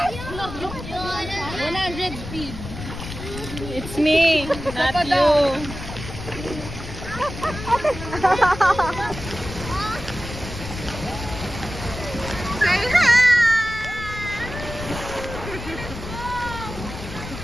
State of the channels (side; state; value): left; noise; rumble, 10 dB below the sound